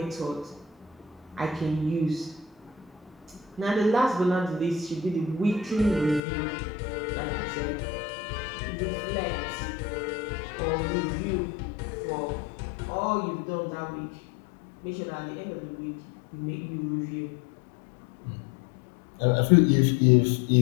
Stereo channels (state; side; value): drops out; right; at 6.2 s